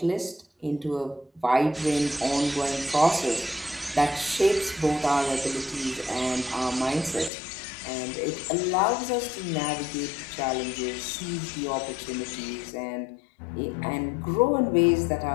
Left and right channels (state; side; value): drops out; right; at 7.3 s